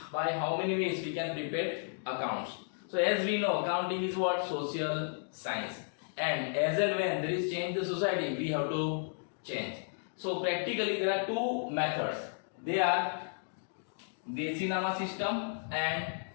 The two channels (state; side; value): silent; right; digital silence